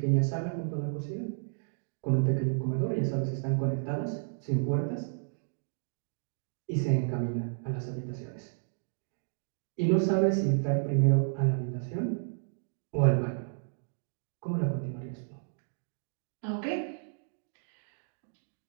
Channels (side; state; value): left; silent; digital silence